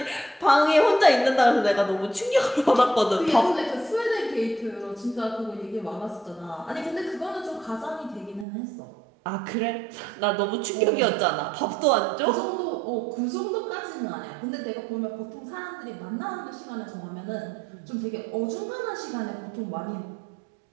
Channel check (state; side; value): drops out; left; at 8.5 s